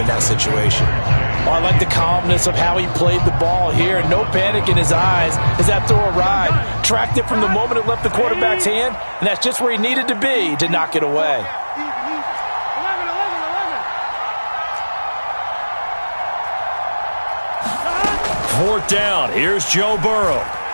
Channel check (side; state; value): both; inverted; correlation -1.00